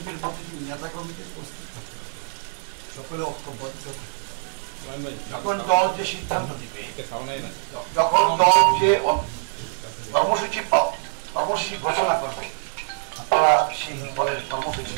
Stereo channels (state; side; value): silent; left; 62 dB below the other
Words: প্রতিটি নেতা কর্মীদের প্রস্তুত থাকতে হবে, সকলে ঐক্যবদ্ধ থাকতে হবে। যখন দল যে সিদ্ধান্ত দিবে, যখন দল যে কর্মসূচি ঘোষণা করবে, আপনারা সেই দলের কর্মসূচি